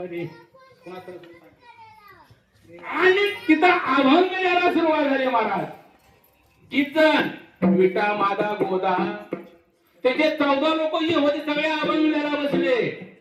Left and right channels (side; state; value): both; identical; correlation 1.00